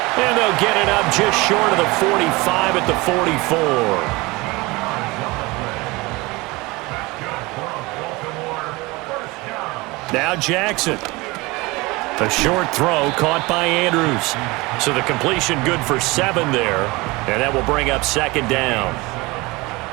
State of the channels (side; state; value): left; quieter; 23.1 dB